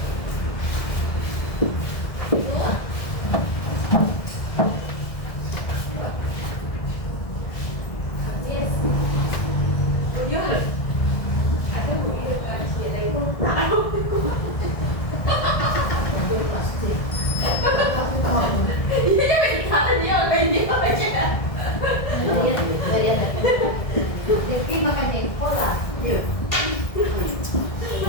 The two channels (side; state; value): right; late; 1.7 ms